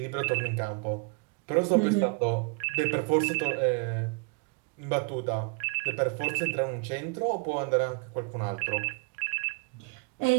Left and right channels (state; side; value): quieter; left; 33.6 dB